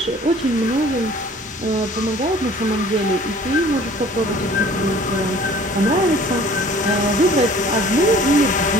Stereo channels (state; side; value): normal; both; correlation 0.50